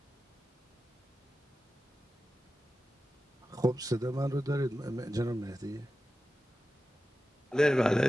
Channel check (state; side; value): normal; both; correlation 0.93